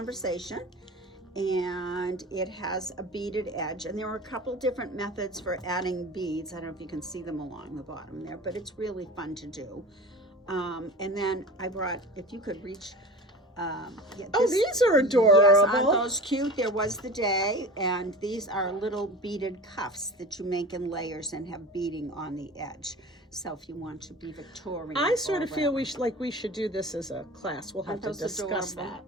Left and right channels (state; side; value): normal; both; correlation 0.35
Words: and it has a beaded edge, and there are a couple different methods for adding beads. I don't know if you can see them along the bottom there, but it's really fun to do. And then I brought, if you could reach. These are adorable. Yes, aren't those cute? There was the day, and these are little beaded cuffs that you make in layers and have beading on the edge. So if you want to be Victorian, I sort of or feel whatever. we should do this as a class. We'll have Aren't to those discuss adorable? that.